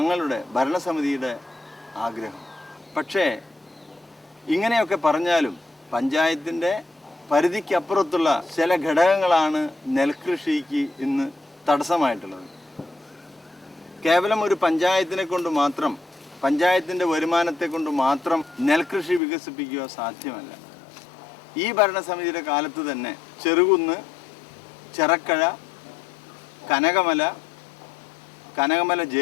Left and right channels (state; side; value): drops out; right; at 19.2 s